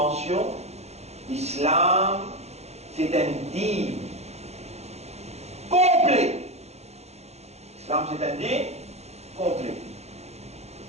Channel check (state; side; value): late; left; 0.31 ms